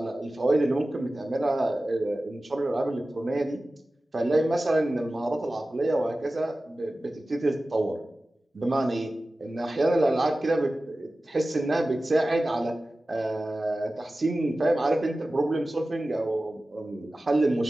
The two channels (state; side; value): normal; both; correlation 0.96